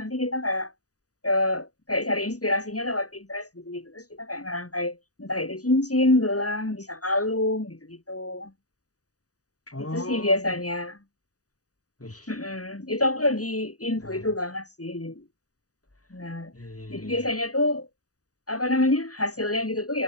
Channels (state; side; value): late; right; 0.67 ms